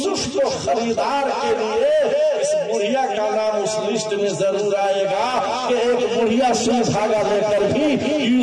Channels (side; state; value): both; identical; correlation 1.00